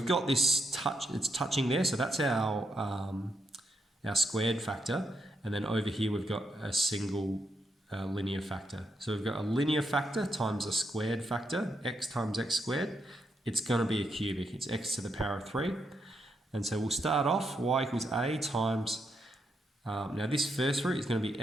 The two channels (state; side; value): normal; both; correlation 0.81